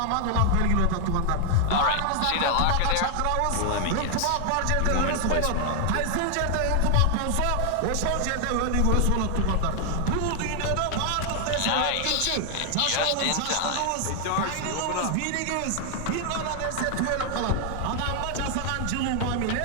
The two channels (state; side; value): different; both; correlation 0.00